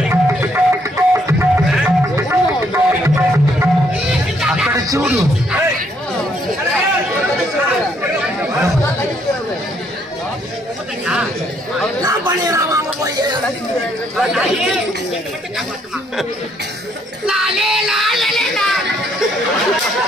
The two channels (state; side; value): normal; both; correlation 0.70